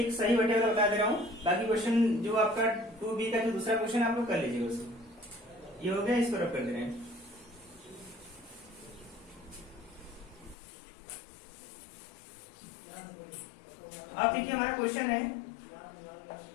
सही बटे वाला बता दे रहा हूँ। बाकी क्वेश्चन जो आपका 2B का जो दूसरा क्वेश्चन आप लोग कर लीजिएगा उसको। ये हो गया, इसको रब कर दे रहे हैं। अब देखिए हमारा क्वेश्चन है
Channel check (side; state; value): right; drops out; at 10.6 s